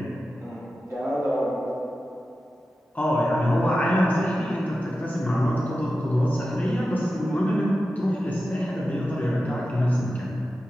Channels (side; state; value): both; normal; correlation 0.92